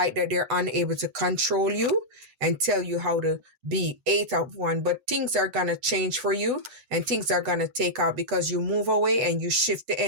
that they're unable to control you and tell you how to be. 8 of Wands. But things are going to change for you and things are going to take out because you move away and you shift the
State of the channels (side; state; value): left; late; 8.2 ms